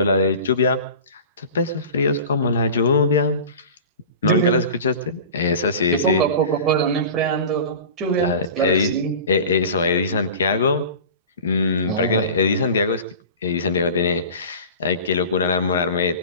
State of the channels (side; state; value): both; inverted; correlation -0.36